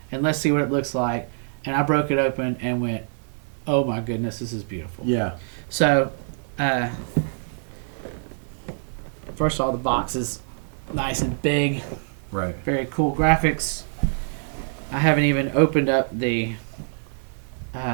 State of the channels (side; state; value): left; silent; digital silence